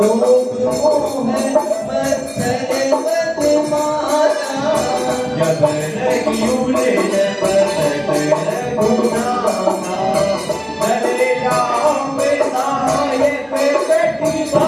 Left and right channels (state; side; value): identical; both; correlation 1.00